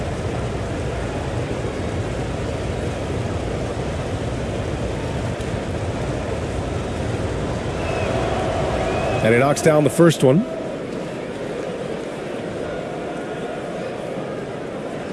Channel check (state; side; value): identical; both; correlation 1.00